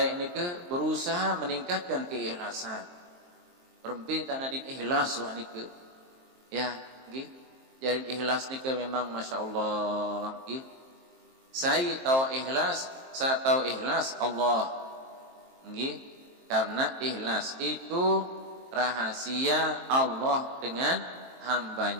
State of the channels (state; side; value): late; left; 23 ms